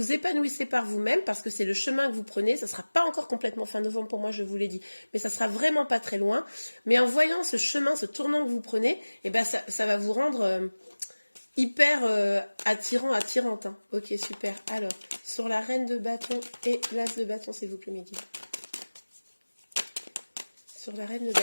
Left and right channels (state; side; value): inverted; both; correlation -1.00